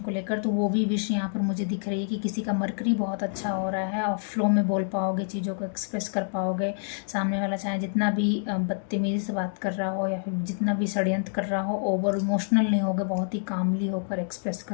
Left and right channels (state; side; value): silent; right; digital silence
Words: को लेकर, तो वो भी विश यहाँ पर मुझे दिख रही है कि किसी का मरकरी बहुत अच्छा हो रहा है और फ्लो में बोल पाओगे, चीज़ों को एक्सप्रेस कर पाओगे। सामने वाला चाहे जितना भी बदतमीजी से बात कर रहा हो या फिर जितना भी षड्यंत्र कर रहा हो, ओवर इमोशनल नहीं होगे, बहुत ही कामली होकर एक्सप्रेस